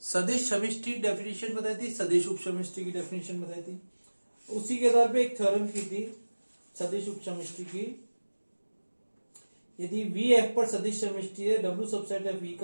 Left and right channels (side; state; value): both; inverted; correlation -1.00